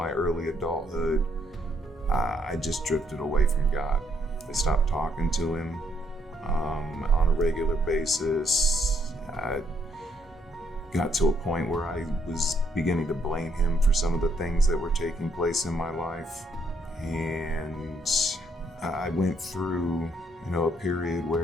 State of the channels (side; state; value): both; normal; correlation 0.71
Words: early adulthood. I just drifted away from God. I stopped talking to him on a regular basis. I got to a point where I was beginning to blame him for some of the things that were taking place in my life. And I went through, a period